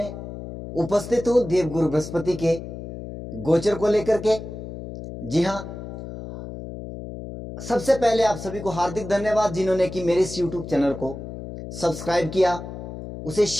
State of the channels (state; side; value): noise; left; hum, 10 dB below the sound